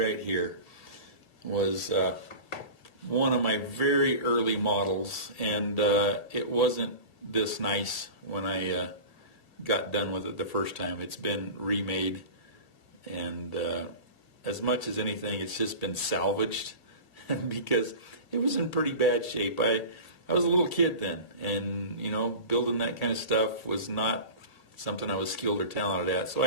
here was one of my very early models, and it wasn't this nice when I got done with it the first time. It's been remade, and as much as anything, it's just been salvaged because it was in pretty bad shape. I was a little kid then, and building that kind of stuff was not something I was skilled or talented at, so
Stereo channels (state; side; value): late; right; 1.6 ms